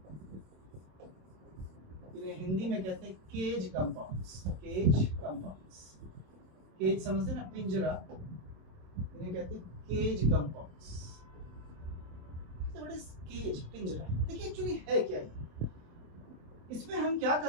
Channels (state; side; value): late; left; 27 ms